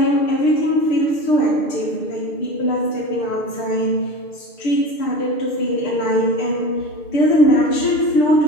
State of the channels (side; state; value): right; late; 6.6 ms